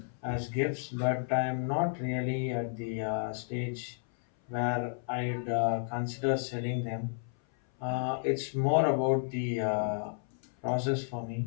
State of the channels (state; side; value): silent; right; 56 dB below the other